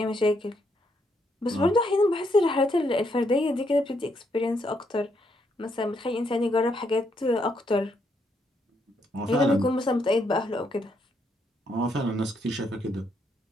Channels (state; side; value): normal; both; correlation 0.75